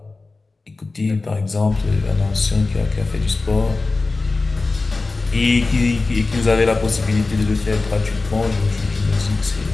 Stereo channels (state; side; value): quieter; right; 3.6 dB